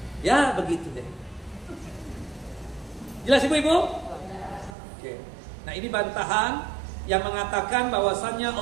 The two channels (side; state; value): left; drops out; at 4.8 s